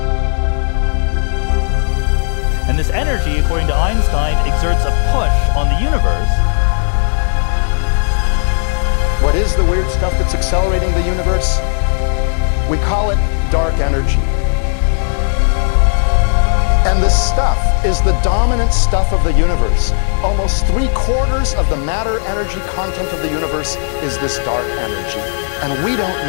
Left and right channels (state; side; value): silent; right; digital silence